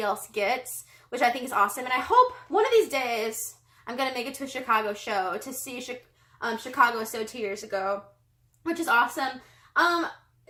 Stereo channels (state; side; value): identical; both; correlation 1.00